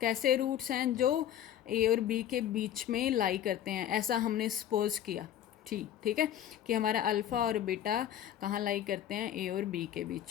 कैसे रूट्स हैं, जो a और b के बीच में लाई करते हैं, ऐसा हमने सपोज किया। ठीक है, कि हमारा अल्फ़ा और बीटा कहाँ लाई करते हैं, ए और बी के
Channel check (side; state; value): right; quieter; 10.8 dB